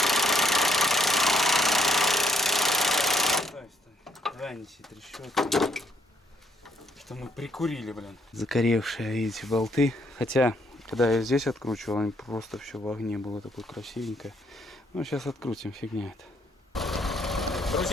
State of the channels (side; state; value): both; normal; correlation 0.71